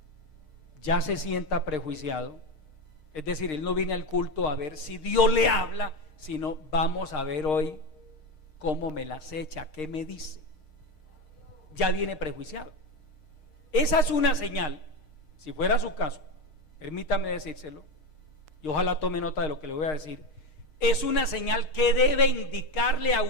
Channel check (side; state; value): right; late; 6.5 ms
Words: ya se sienta prejuiciado, es decir, él no viene al culto a ver si Dios le habla, sino vamos a ver hoy cómo me las echa, qué me dice. Ya viene prejuiciado. Esa es una señal, si fuera su caso, permítame decírselo, y ojalá tome nota de lo que le voy a decir. Es una señal que debe indicarle a